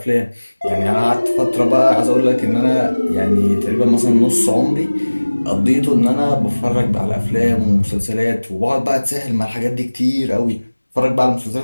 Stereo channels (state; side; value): inverted; both; correlation -1.00